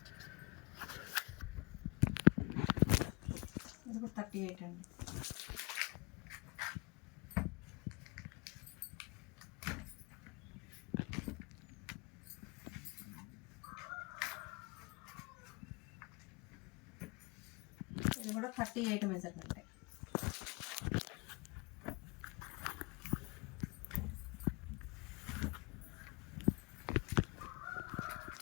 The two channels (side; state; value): right; quieter; 29.2 dB